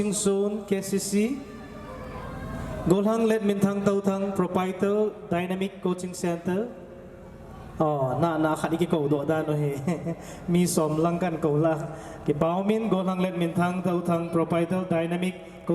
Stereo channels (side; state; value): both; identical; correlation 1.00